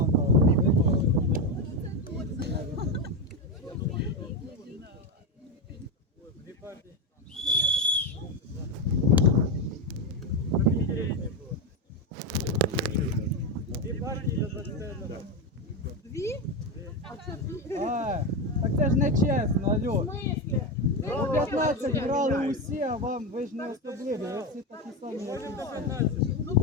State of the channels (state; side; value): normal; both; correlation 0.12